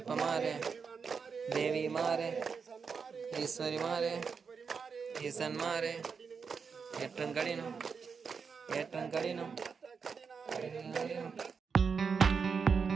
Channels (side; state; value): left; quieter; 5.7 dB